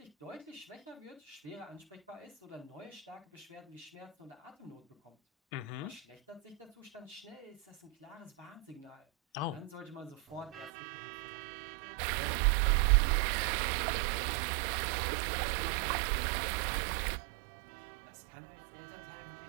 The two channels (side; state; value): left; drops out; at 10.7 s